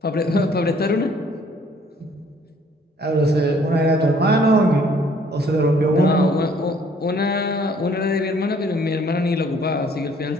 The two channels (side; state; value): both; normal; correlation 0.60